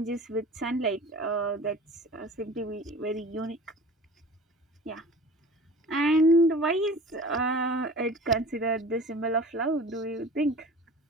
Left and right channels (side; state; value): both; normal; correlation 0.40